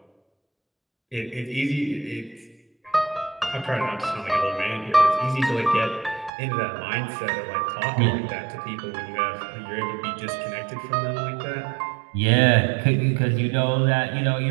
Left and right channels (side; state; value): left; drops out; at 6.3 s